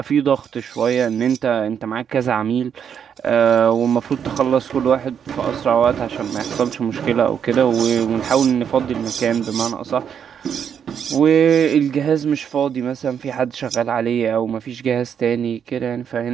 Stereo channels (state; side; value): quieter; left; 8.0 dB